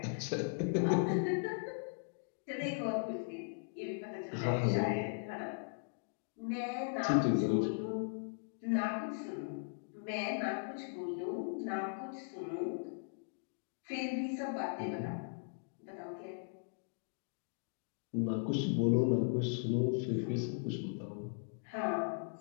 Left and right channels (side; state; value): right; silent; digital silence